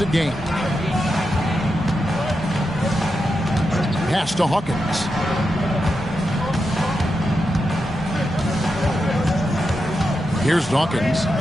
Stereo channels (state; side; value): normal; both; correlation 0.87